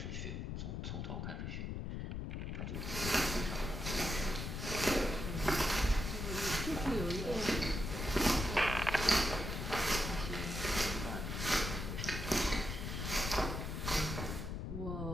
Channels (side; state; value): left; noise; rumble, 4 dB below the sound